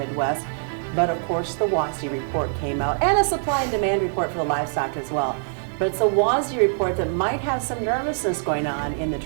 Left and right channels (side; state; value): left; silent; 58 dB below the other